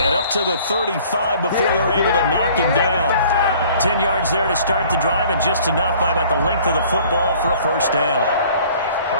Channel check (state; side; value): inverted; both; correlation -0.53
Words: up to the 35 before they're able to knock him down. 10 yards there to start the drive, and just enough by about the length of the football for a first down.